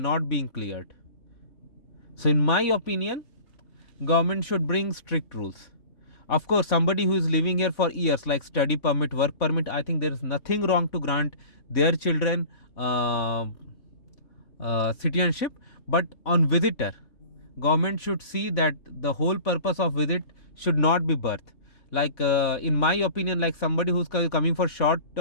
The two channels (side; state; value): right; late; 3.5 ms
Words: being cleared. So in my opinion, government should bring strict rules. Of course, somebody who is living here for years, like study permit, work permit, I think there is nothing wrong to grant their children citizenship. But on visitor, government should see that the whole purpose of visit should not be birth. Like in my opinion, like somebody who's coming for